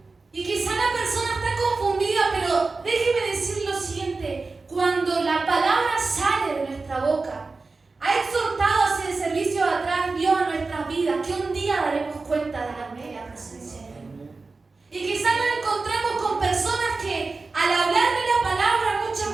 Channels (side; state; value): left; quieter; 3.9 dB